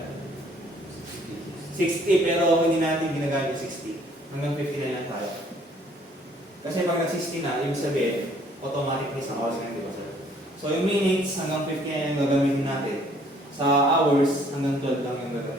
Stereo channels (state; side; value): normal; both; correlation 0.61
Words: 60, pero hindi natin ginagamit yung 60. Hanggang 50 na lang tayo. Kasi pag nag-60 na, ibig sabihin, automatic isang oras na, di ba, sir? So, yung minutes, hanggang 50 na yung gagamitin natin. Sa hours, hanggang 12 lang yung